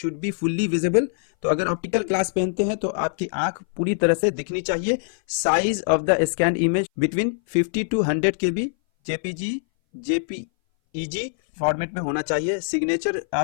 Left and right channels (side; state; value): right; silent; 59 dB below the other